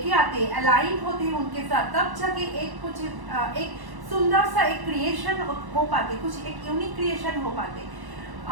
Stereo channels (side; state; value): left; late; 1.1 ms